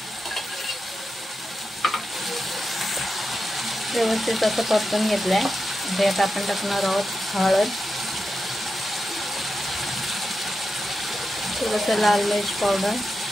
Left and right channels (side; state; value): both; normal; correlation 0.89